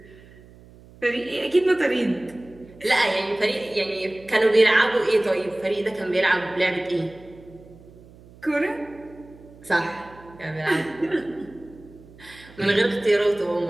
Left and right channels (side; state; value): right; noise; hum, 23 dB below the sound